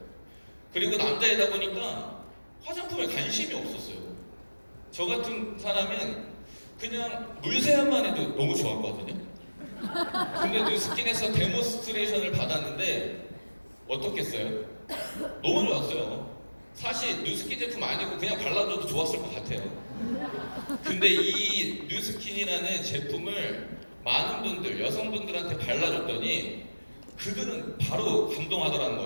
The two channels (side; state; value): both; inverted; correlation -1.00